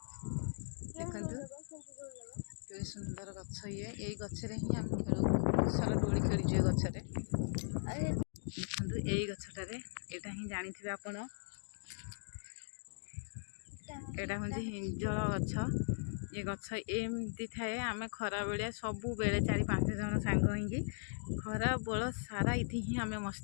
ଏ ସୁନ୍ଦର ଗଛ ଇଏ। ଏଇ ଗଛରେ ହିଁ ଆମେ ଖେଳୁ, ବହୁତ ସାରା ଦୋଳି ଖେଳିଛୁ ଏ ଗଛରେ। ଦେଖନ୍ତୁ ଏଇ ଗଛଟାରେ, ଏଇଟା ହିଁ ଜାଣିଥିବେ ଆପଣ, ଏଇଟା ହେଉଛି ହିଞ୍ଜଳ ଗଛ। ଏ ଗଛ ଏମିତି ଥାଏ। ଆମେ ଖରାବେଳିଆ ସବୁବେଳେ 4-5 ଜଣ ସାଙ୍ଗ ହେଇକି ଖରା ବେଳ ସାରା ଏଠି ହିଁ ଆମେ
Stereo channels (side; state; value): right; silent; digital silence